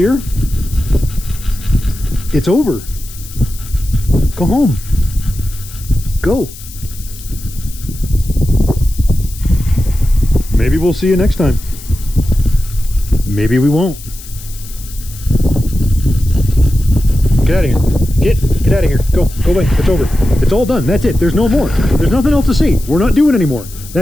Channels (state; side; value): noise; left; hiss, 16 dB below the sound